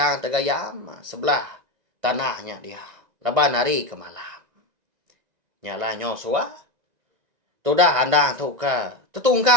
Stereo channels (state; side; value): late; left; 1.9 ms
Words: tegayam sebelah tanahnya dia. Laban hari ke malam. Nyala nyo suah. Tudah handang tu ke